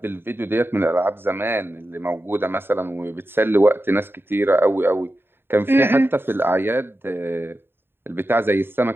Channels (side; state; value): left; late; 0.11 ms